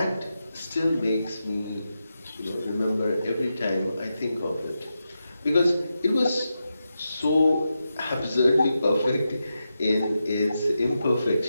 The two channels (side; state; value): both; inverted; correlation -0.89